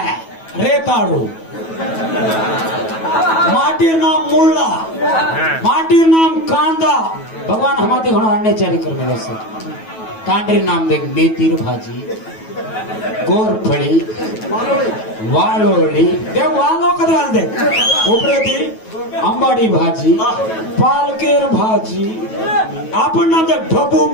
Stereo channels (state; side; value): late; right; 9.2 ms